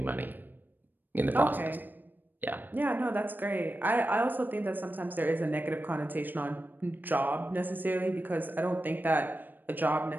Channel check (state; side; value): late; left; 0.091 ms